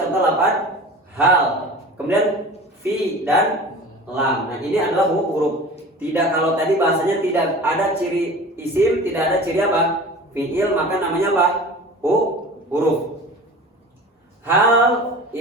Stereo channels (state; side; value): normal; both; correlation 0.38